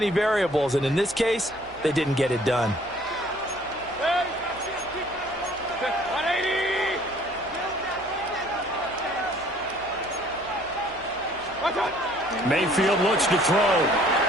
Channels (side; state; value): left; noise; hum, 22 dB below the sound